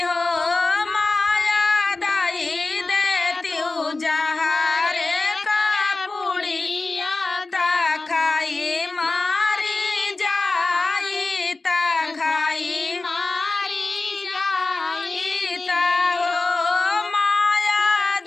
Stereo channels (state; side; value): quieter; right; 3.4 dB